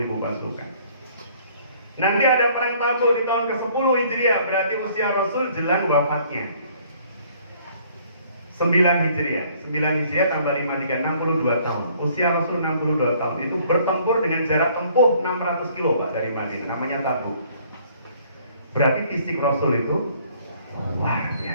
pasukan. Nanti ada perang Tabuk di tahun ke-10 Hijriah, berarti usia Rasul jelang wafatnya 9 Hijriah, 9 Hijriah tambah 53, 62 tahun. Usia Rasul 62 tahun, itu bertempur dengan jarak tempuh 600 kilo Pak dari Madinah, namanya Tabuk. Berarti fisik Rasul itu luar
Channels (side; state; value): both; inverted; correlation -0.59